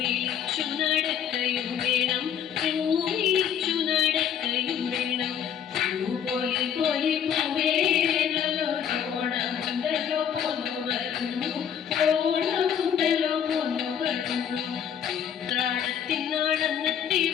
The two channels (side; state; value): right; quieter; 8.6 dB